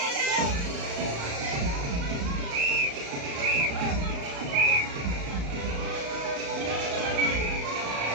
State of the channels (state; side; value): late; left; 35 ms